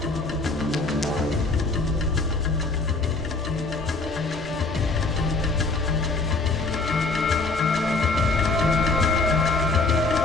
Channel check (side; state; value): right; quieter; 3.6 dB